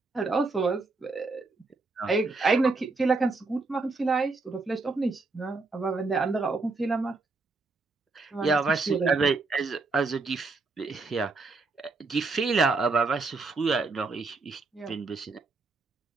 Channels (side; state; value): left; quieter; 3.8 dB